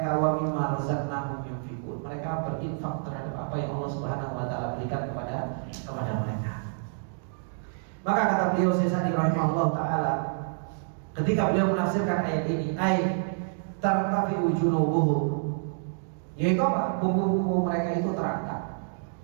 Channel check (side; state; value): left; silent; digital silence